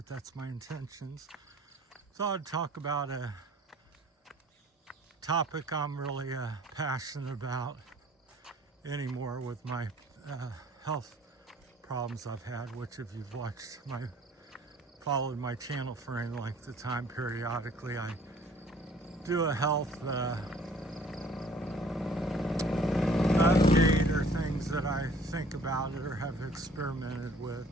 that's my intentions. Thought I'd talk about a topic I'm really passionate about anymore with my health problems I've had, which if you've followed my channel for any length of time, periodically I do a health update or things that I think about or have experimented with,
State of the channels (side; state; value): both; normal; correlation 0.54